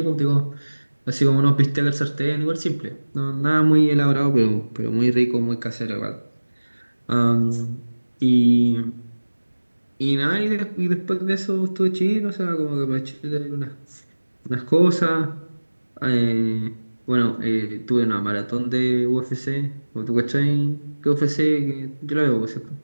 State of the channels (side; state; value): both; inverted; correlation -1.00